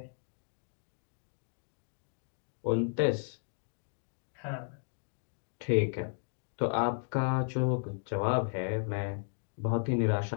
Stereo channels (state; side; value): silent; right; digital silence